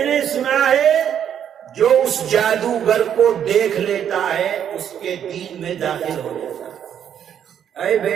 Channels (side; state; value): left; quieter; 9.2 dB